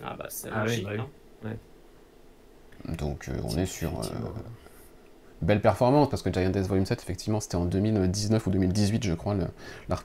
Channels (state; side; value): identical; both; correlation 1.00